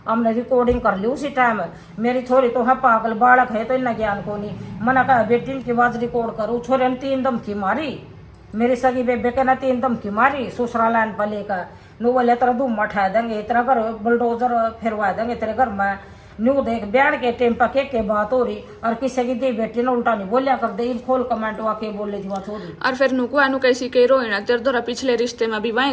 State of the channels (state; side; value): identical; both; correlation 1.00